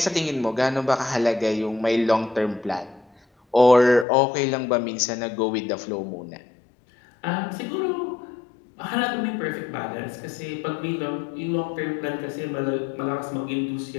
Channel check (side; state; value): right; drops out; at 4.0 s